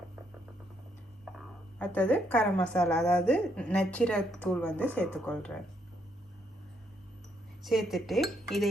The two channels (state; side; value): normal; both; correlation 0.74